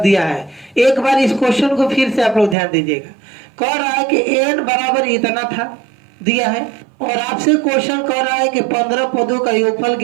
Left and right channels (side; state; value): left; drops out; at 2.6 s